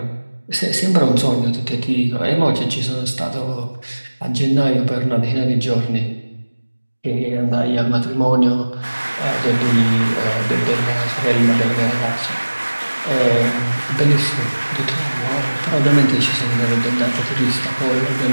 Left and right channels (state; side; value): inverted; both; correlation -1.00